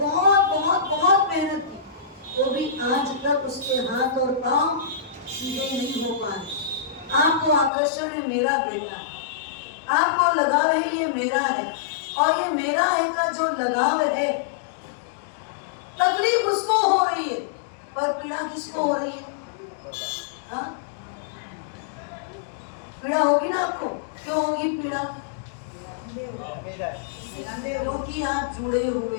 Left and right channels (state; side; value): drops out; right; at 7.7 s